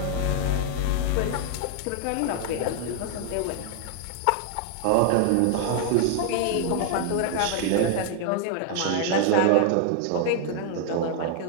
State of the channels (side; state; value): both; different; correlation 0.00